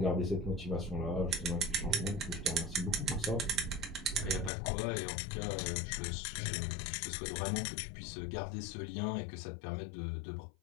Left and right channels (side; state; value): right; drops out; at 4.5 s